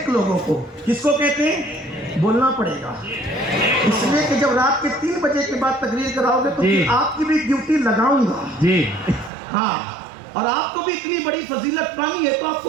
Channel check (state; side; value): drops out; left; at 9.3 s